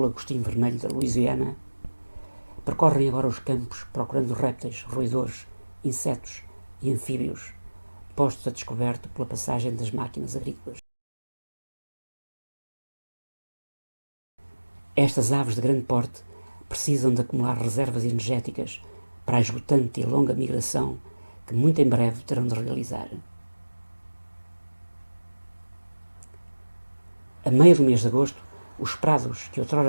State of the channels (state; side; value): inverted; both; correlation -1.00